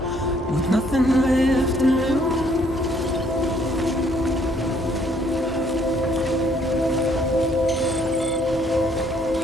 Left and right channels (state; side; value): normal; both; correlation 0.65